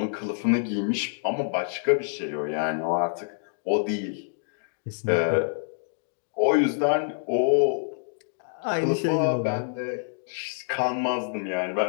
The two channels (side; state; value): right; silent; digital silence